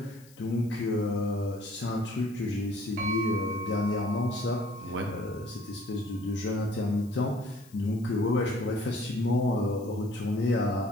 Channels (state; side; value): noise; left; hiss, 25 dB below the sound